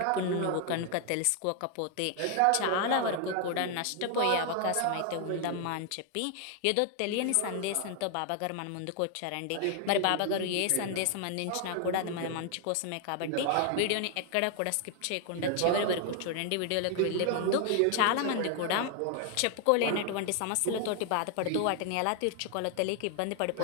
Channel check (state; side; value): different; both; correlation 0.00